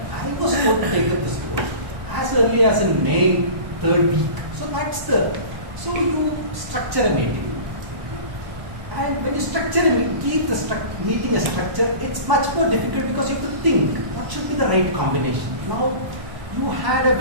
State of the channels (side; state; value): left; late; 1.0 ms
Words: I was told to take up this road as early as in May, 3rd week. So you structure a meeting. And when you structure a meeting, keep the meeting a structure, it's much more difficult because you have to think, what should be the right combination? Now, you